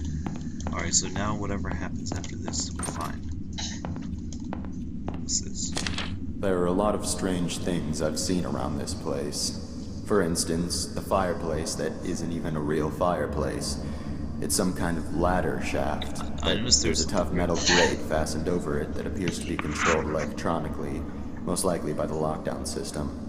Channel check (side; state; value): both; identical; correlation 1.00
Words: Alright, so now whatever happens after this, we're fine. What's this? There are a lot of strange things I've seen around this place. For instance, the fireplace that isn't even a real fireplace. It's some kind of ladder shaft. I noticed There's a tough metal grate fastened over it that appears to be controlled electronically, most likely by the lockdown system.